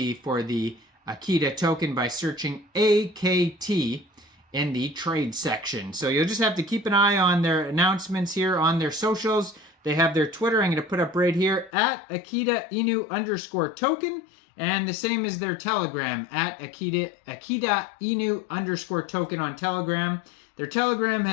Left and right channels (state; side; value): drops out; right; at 11.7 s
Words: for the Akita token by searching AKT in the trade section. So you'll just have to keep an eye on their announcements here on their socials. They have their Twitter, I'm going to put up right here, at Akita Inu _token. And the same as their Telegram at Akita Inu _ token on Telegram. Their Telegram